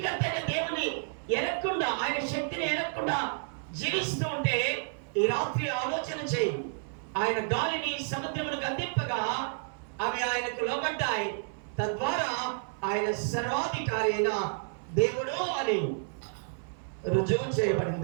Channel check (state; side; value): silent; left; 57 dB below the other